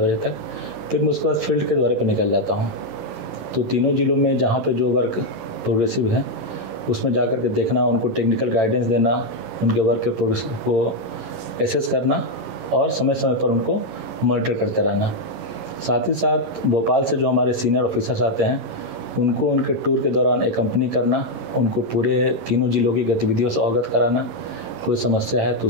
तक। फिर मैं उसके बाद फील्ड के दौरे पर निकल जाता हूँ। तो तीनों जिलों में जहाँ पर जो वर्क प्रोग्रेसिव है उसमें जा कर के देखना, उनको टेक्निकल गाइडेंस देना, उनके वर्क के प्रोग्रेस को एसेस करना और समय समय पर उनको मॉनिटर करते रहना। साथ ही साथ भोपाल से जो हमारे सीनियर ऑफिसर्स आते हैं उनको उनके टूर के दौरान एकम्पनी करना, उनको पूरे तीनों जिलों की गतिविधियों से अवगत कराना, कोई समस्या है तो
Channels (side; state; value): left; late; 11 ms